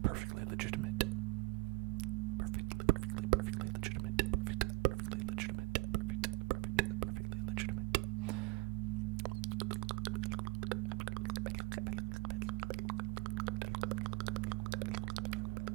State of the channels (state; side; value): quieter; left; 25.5 dB